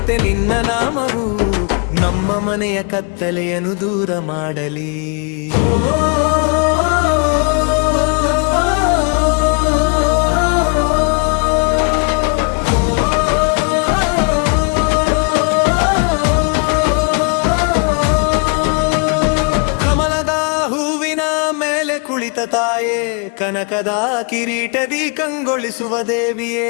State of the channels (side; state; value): right; quieter; 36.8 dB